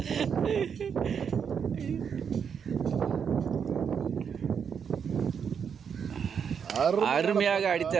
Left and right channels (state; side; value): quieter; left; 7.1 dB